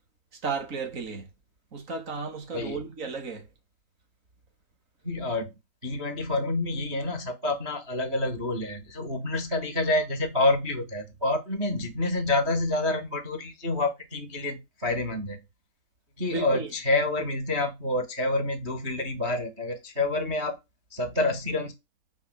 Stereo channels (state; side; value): late; left; 3.2 ms